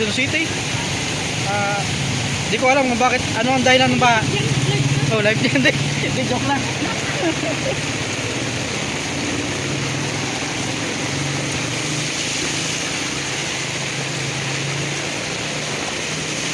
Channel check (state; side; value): identical; both; correlation 1.00